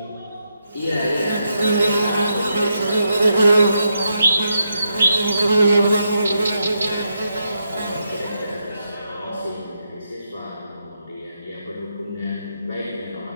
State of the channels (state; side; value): inverted; both; correlation -0.82